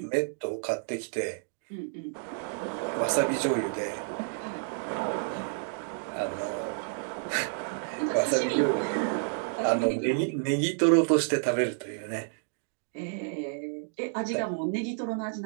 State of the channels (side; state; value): left; silent; digital silence